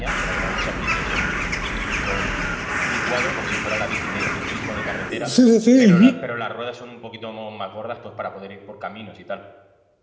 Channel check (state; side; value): identical; both; correlation 1.00